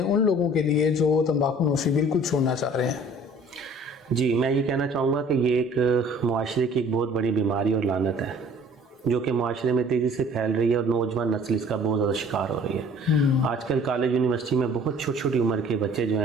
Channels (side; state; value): both; normal; correlation 0.52